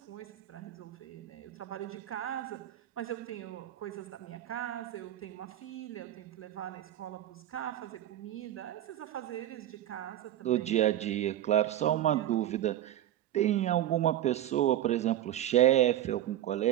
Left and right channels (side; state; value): left; quieter; 12.5 dB